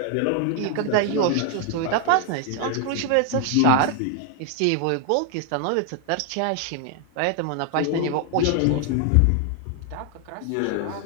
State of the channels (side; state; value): both; different; correlation 0.00